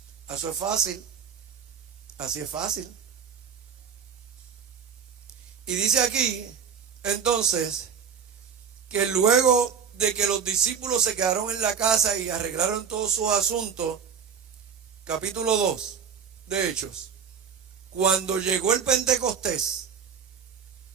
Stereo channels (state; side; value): quieter; left; 6.9 dB